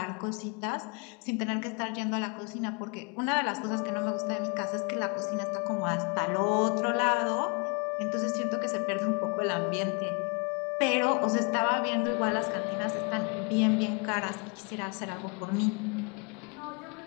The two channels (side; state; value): right; quieter; 32.6 dB